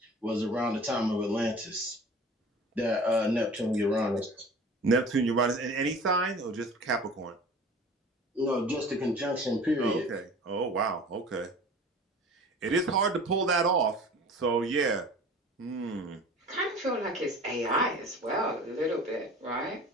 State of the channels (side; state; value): both; normal; correlation 0.42